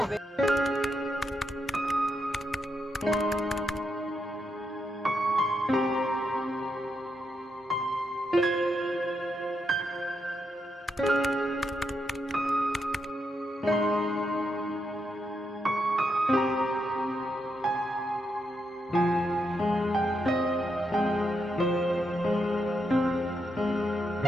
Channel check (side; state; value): both; normal; correlation 0.82